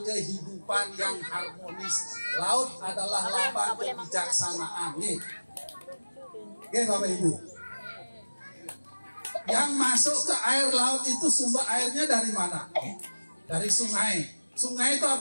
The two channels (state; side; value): inverted; both; correlation -1.00